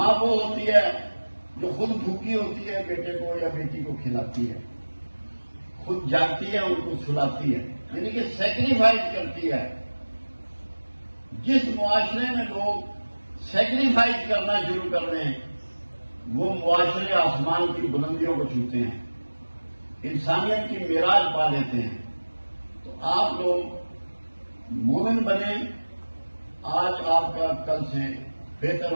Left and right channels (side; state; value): both; inverted; correlation -1.00